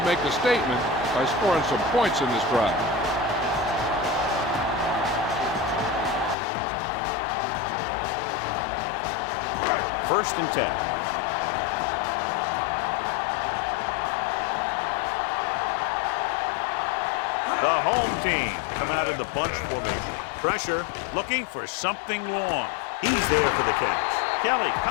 make a statement by scoring some points in this drive. First and 10. The home team come out in the bunch formation. Pressure, looking for something long. He's there for the catch. Kelly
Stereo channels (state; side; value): drops out; right; at 6.4 s